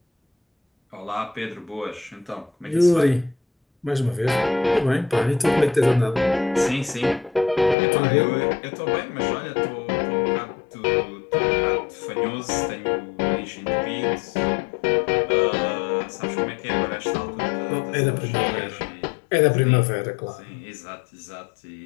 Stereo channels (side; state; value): right; drops out; at 7.8 s